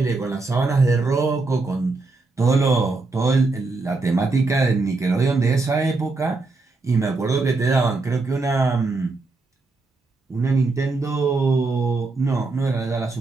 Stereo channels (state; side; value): quieter; left; 3.6 dB